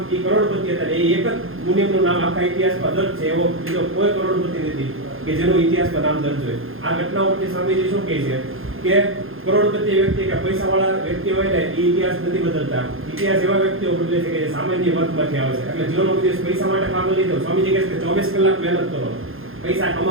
એ કરોડપતિ હતા. એ એક જ મુનિમનું નામ આખા ઇતિહાસમાં દર્જ છે. એવો બીજો કોઈ કરોડપતિ નથી કે જેનું ઇતિહાસમાં નામ દર્જ હોય. આ ઘટનાઓ પરથી સ્વામીજી શું કહે છે કે કરોડપતિ વ્યક્તિ કે પૈસાવાળા વ્યક્તિ હોય ને એ ઇતિહાસ નથી બદલતા. ઇતિહાસ એવા વ્યક્તિઓ બદલે છે કે જે સામાન્ય વર્ગમાંથી આવે છે. એટલે જીવનનો દિવસ પૈસા માટે પાગલ નહીં થયો. સ્વામીજી કહે છે કે 24 કલાક મહેનત કરો પૈસા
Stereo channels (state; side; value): late; left; 0.60 ms